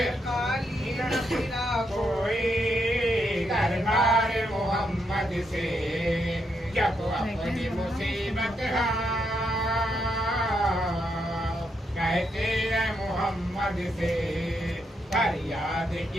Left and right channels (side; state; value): both; normal; correlation 0.80